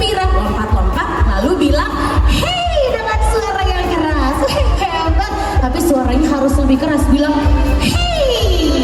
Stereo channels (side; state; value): both; identical; correlation 1.00